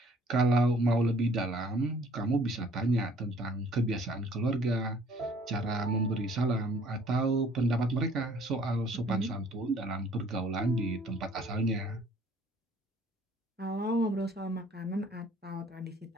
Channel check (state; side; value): normal; both; correlation 0.57